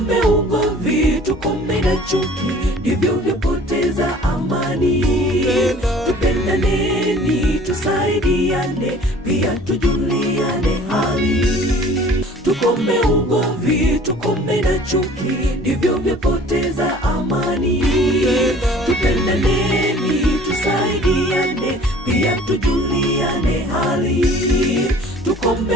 ugomvi, tukome na chuki, ndivyo vyapoteza amani. Tupendaneni, tusaidiane, pia tujuliane hali. Tukome ugomvi, tukome na chuki, ndivyo vyapoteza amani. Tupendaneni, tusaidiane, pia tujuliane hali.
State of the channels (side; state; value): both; normal; correlation 0.49